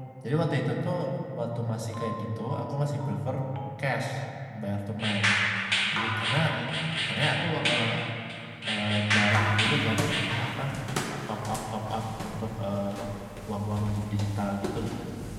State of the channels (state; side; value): identical; both; correlation 1.00